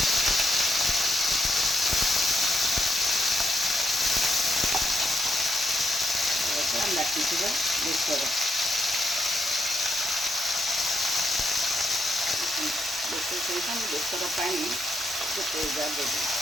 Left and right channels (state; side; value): normal; both; correlation 0.80